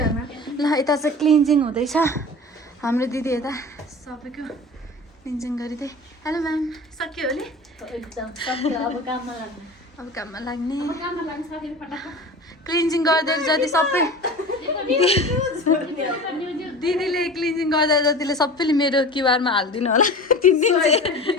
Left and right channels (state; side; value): normal; both; correlation 0.36